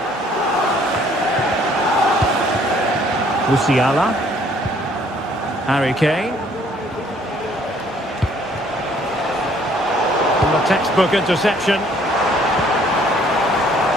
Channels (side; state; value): both; normal; correlation 0.61